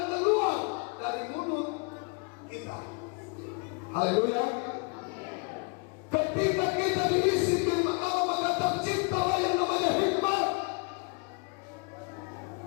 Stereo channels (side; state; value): right; quieter; 32.9 dB